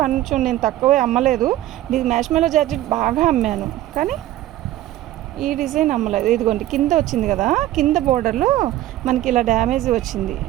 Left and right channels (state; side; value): quieter; left; 14.5 dB